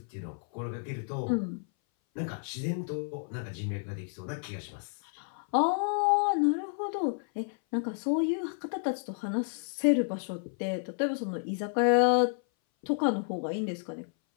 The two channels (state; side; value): silent; right; 57 dB below the other